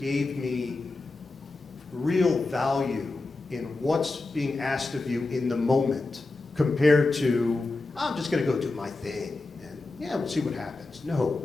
me real value in what's being asked of you in the moment, compared to, I'm just going to go do my thing, and yeah, we'll see what happens. No,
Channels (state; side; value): quieter; right; 3.4 dB